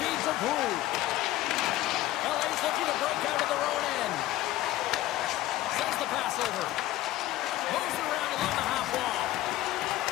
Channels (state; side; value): quieter; right; 15.5 dB